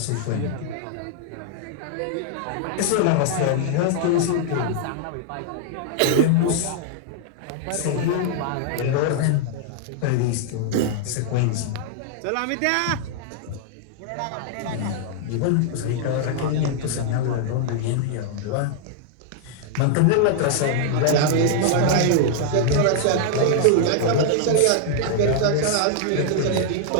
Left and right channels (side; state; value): both; different; correlation 0.00